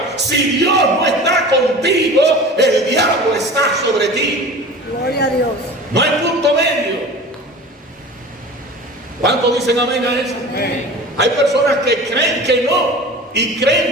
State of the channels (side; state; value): both; normal; correlation 0.38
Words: Si Dios no está contigo, el diablo está sobre ti. Gloria a Dios. No hay punto medio. ¿Cuántos dicen amén a eso? Amén. Hay personas que creen que no y